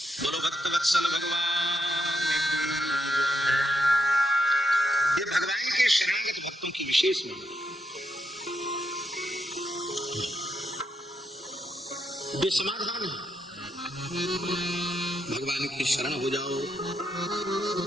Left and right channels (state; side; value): normal; both; correlation 0.80